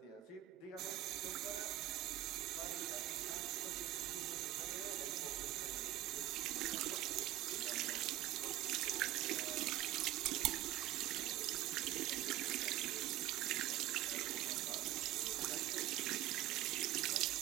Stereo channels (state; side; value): quieter; left; 14.6 dB